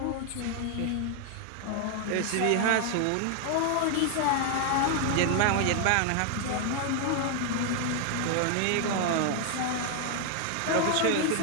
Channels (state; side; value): different; both; correlation 0.00